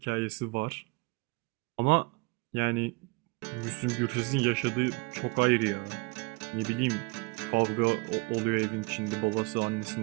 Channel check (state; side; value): quieter; left; 28.3 dB